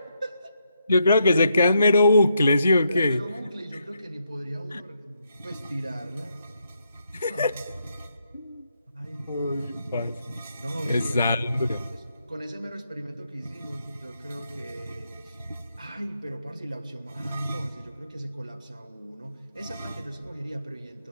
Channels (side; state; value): both; inverted; correlation -0.79